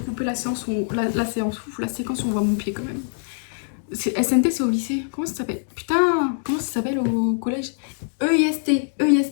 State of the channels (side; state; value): right; silent; digital silence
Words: couper la séquence où on voit mon pied, quand même. SNT, c'est au lycée. Comment ça s'appelle? Putain, comment ça s'appelle au collège? EIST.